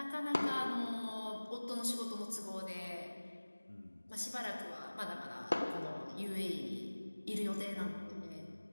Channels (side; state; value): both; inverted; correlation -1.00